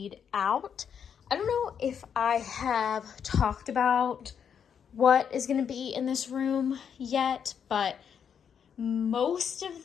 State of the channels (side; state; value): right; quieter; 7.7 dB